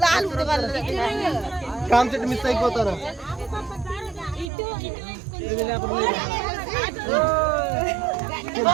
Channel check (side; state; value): left; drops out; at 4.5 s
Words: concept miss అయిపోతాను